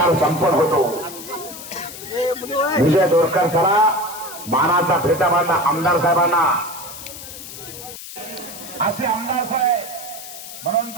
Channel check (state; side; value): noise; left; hiss, 13 dB below the sound